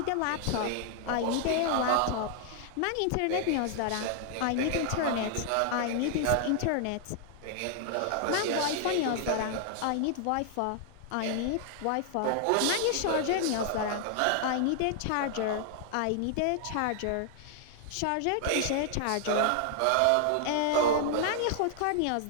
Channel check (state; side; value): different; both; correlation 0.00